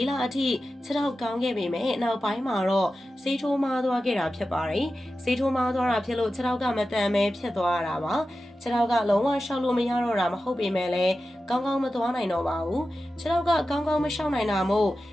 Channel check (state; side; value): normal; both; correlation 0.93